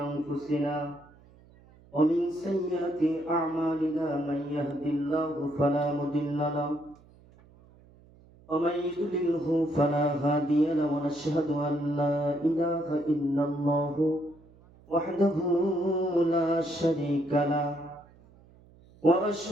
আনফুসিনা ওয়া মিন সাইয়্যাতি আ'মালিনা মান ইয়াহদিল্লাহু ফালা মুদিল্লা লাহু ومن يضلله فلا هادي له ونشهد أن لا إله إلا الله وحده لا شريك له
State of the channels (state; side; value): noise; right; hum, 26 dB below the sound